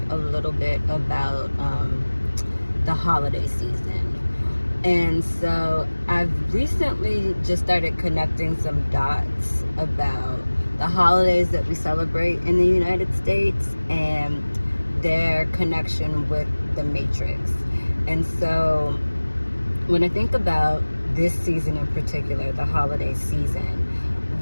a little bit about the holiday season. And so I've recently just started connecting some dots about the holidays that we celebrate in the United States and their connection with the Matrix. And so when I think about this season in particular, the holiday season,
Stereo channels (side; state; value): both; inverted; correlation -1.00